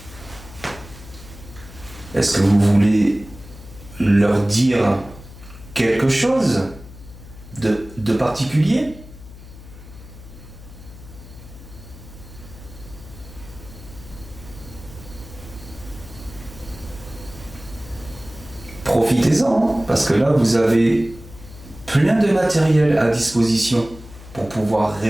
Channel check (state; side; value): noise; left; hum, 17 dB below the sound